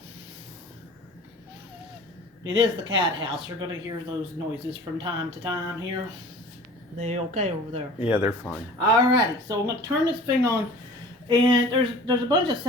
It is the cat house. You're going to hear those noises from time to time here. They okay over there? Yeah, they're fine. Alrighty, so I'm going to turn this thing on, and there's a bunch of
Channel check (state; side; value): normal; both; correlation 0.44